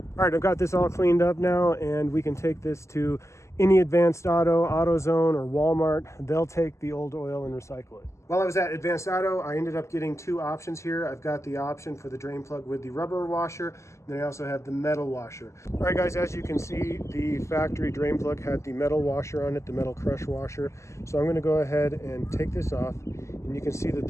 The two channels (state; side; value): late; right; 0.14 ms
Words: All right, I've got this all cleaned up now, and we can take this to any Advanced Auto, AutoZone, or Walmart. They'll take the old oil and recycle it. While I was at Advanced Auto, I ended up getting two options here. I've got the option for the drain plug with the rubber washer, and then I also have the metal washer. All right, guys, as you can see, the factory drain plug had the metal washer on it, the metal crush washer. So I'm going to go ahead and take this off, and you can see that